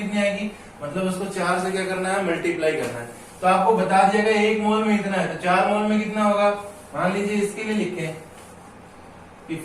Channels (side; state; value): both; identical; correlation 1.00